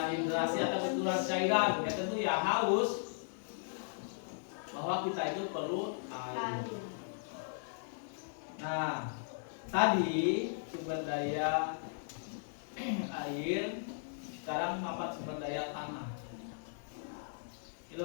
hidrasi atau kekurangan cairan, ya tentu ya haus. Bahwa kita itu perlu air. Nah, tadi sumber daya air, sekarang manfaat sumber daya tanah.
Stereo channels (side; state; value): right; silent; digital silence